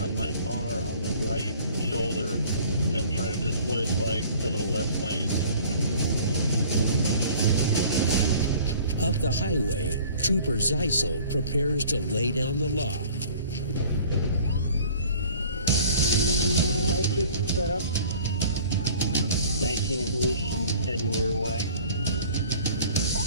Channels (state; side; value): inverted; both; correlation -0.49